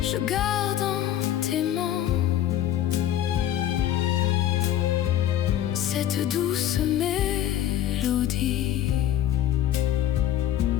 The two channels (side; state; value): right; quieter; 11.6 dB